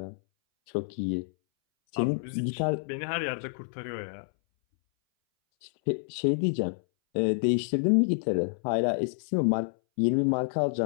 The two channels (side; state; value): right; silent; 59 dB below the other